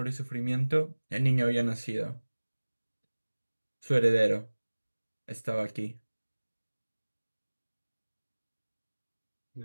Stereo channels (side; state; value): both; inverted; correlation -1.00